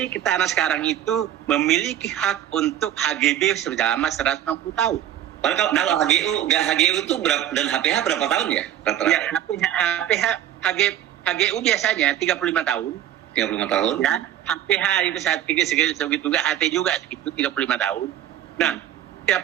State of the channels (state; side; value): quieter; left; 11.3 dB